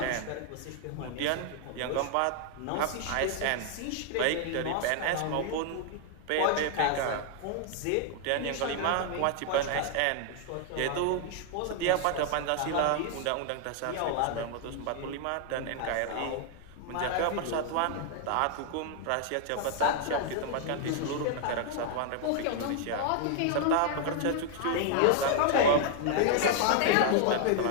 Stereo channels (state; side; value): different; both; correlation 0.00